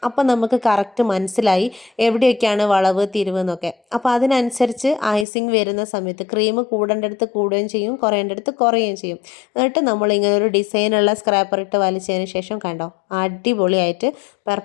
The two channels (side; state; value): right; drops out; at 5.2 s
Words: അപ്പോൾ നമുക്ക് കറക്റ്റ് മനസ്സിലായി എവിടെയൊക്കെയാണ് വളവ് തിരിവ് എന്നൊക്കെ. അപ്പോൾ അതിനനുസരിച്ച് ഐസിങ് വരുന്ന സമയത്ത് ക്രീം കൂടേണ്ടടുത്ത് കൂടുകയും ചെയ്യും, കുറയേണ്ടടുത്ത് കുറയുകയും ചെയ്യും. എന്നിട്ട് നമ്മളിങ്ങനെ ഒരു ഡിസൈനുള്ള സ്ക്രാപ്പർ ഇട്ട് വലിച്ചതിന് ശേഷം കണ്ടോ, അടിപൊളിയായിട്ട്